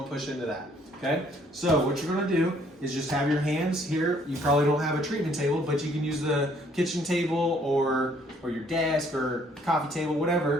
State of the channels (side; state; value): both; normal; correlation 0.63